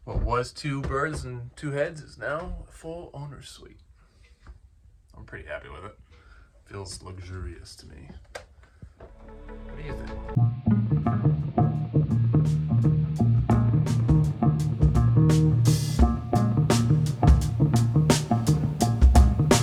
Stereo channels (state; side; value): identical; both; correlation 1.00